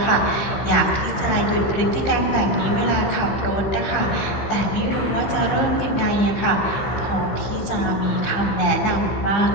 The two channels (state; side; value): late; right; 15 ms